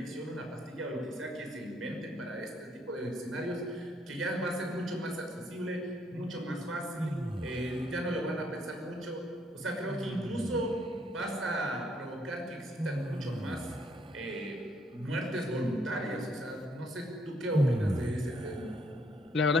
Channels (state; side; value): normal; both; correlation 0.69